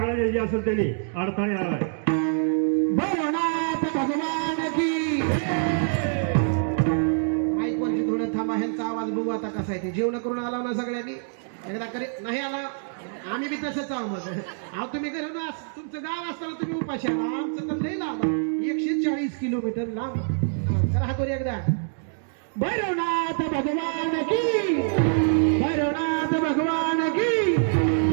असेल त्यांनी अडथळे आलाय. भैरवनाथ भगवान की माईक वरची थोडं थांबा, ह्यांचा आवाज बघू आता कसा आहे ते. जेवण करून आला ना सगळ्यांनी, एकदा करी नाही आला आम्ही बी तसंच आहो. मग अहो तुम्ही घरी ना तुमचं गाव असताना तुम्ही उपाशी आला, आमचं तर लई लांब आहे, 140 किलोमीटर लांब. करा हातवर एकदा. भैरवनाथ भगवान की, भैरवनाथ भगवान की,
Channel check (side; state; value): left; silent; digital silence